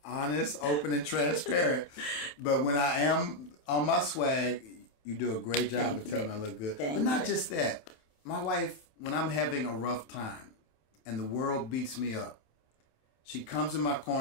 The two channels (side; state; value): right; late; 27 ms